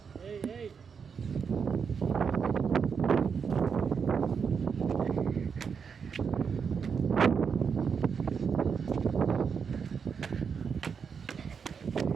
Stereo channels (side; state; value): left; quieter; 6.3 dB